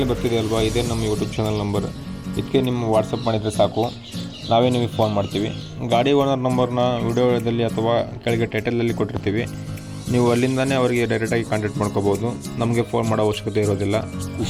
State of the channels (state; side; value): identical; both; correlation 1.00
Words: ಬರ್ತಿದೆ ಅಲ್ವಾ, ಇದೇ ನಮ್ಮ ಯೂಟ್ಯೂಬ್ ಚಾನಲ್ ನಂಬರ್. ಇದಕ್ಕೆ ನಿಮ್ಮ ವಾಟ್ಸಪ್ ಮಾಡಿದರೆ ಸಾಕು, ನಾವೇ ನಿಮಗೆ ಫೋನ್ ಮಾಡ್ತೀವಿ. ಗಾಡಿ ಓನರ್ ನಂಬರ್ನ ವಿಡಿಯೋದಲ್ಲಿ ಅಥವಾ ಕೆಳಗೆ ಟೈಟಲಲ್ಲಿ ಕೊಟ್ಟಿರ್ತೀವಿ. ನೀವು ಅಲ್ಲಿಂದನೇ ಅವರಿಗೆ ಡೈರೆಕ್ಟಾಗಿ ಕಾಂಟ್ಯಾಕ್ಟ್ ಮಾಡ್ಕೋಬೋದು. ನಮಗೆ ಫೋನ್ ಮಾಡೋ ಅವಶ್ಯಕತೆ ಇರೋದಿಲ್ಲ.